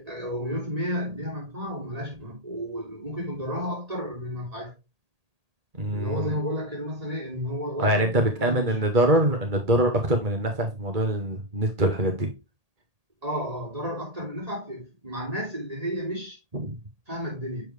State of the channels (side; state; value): left; late; 1.8 ms